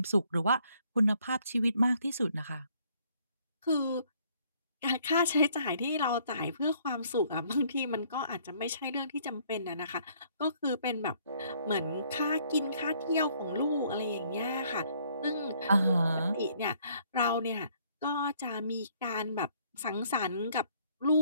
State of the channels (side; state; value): both; inverted; correlation -0.64